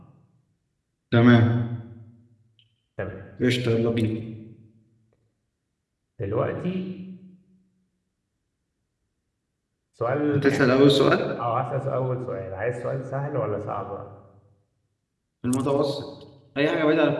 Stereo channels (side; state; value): both; identical; correlation 1.00